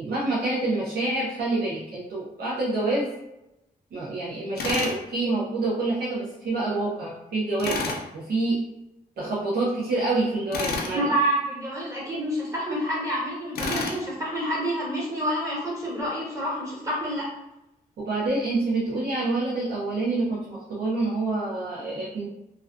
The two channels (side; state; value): both; normal; correlation 0.49